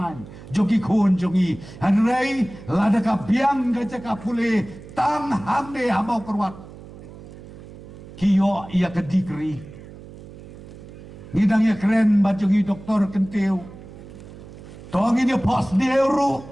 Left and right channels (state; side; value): noise; right; hum, 16 dB below the sound